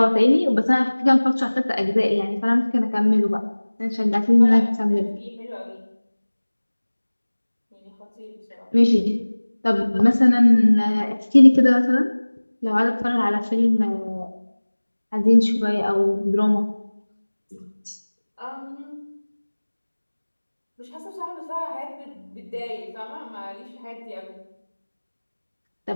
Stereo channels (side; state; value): both; inverted; correlation -1.00